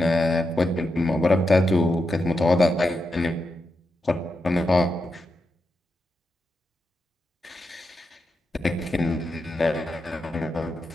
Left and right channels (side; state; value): both; normal; correlation 0.86